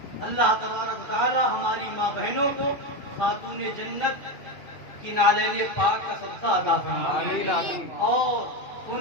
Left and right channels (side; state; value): right; late; 2.5 ms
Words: اللہ تبارک تعالی ہماری ماں بہنوں کو خاتون جنت کی نالین پاک کا صدقہ عطا فرمائے اور